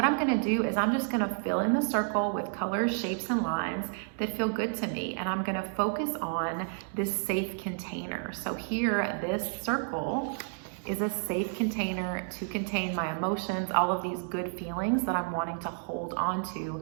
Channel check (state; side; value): silent; left; 57 dB below the other